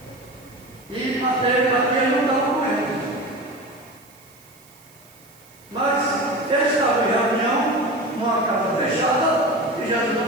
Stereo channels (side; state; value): right; noise; hiss, 26 dB below the sound